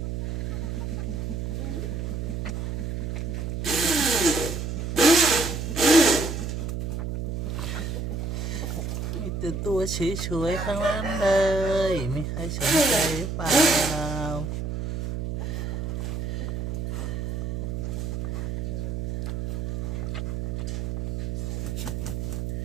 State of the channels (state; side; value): noise; right; hum, 3 dB below the sound